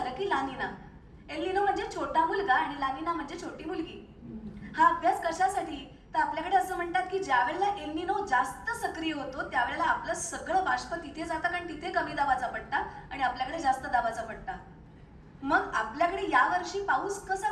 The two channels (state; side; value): identical; both; correlation 1.00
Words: की लानिना. एल्निनो म्हणजे छोटा मुलगा आणि लानिना म्हणजे छोटी मुलगी. हा अभ्यास कशासाठी? तर आपल्याकडे असं म्हणतात की ज्या वेळेला एल्निनो जास्त सक्रिय होतो त्यावेळेला आपलं सगळं बाष्प तिथे जातं, कारण तिथे कमी दाबाचा पट्टा आणि आपल्याकडे जास्त दाबाचा पट्टा. मग आपल्याकडे यावर्षी पाऊस